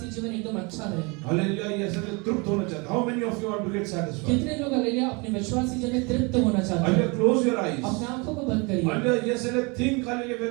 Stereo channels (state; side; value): quieter; left; 29.2 dB